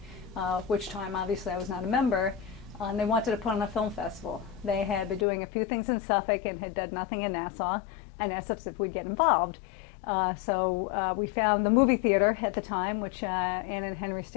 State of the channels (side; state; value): right; drops out; at 5.2 s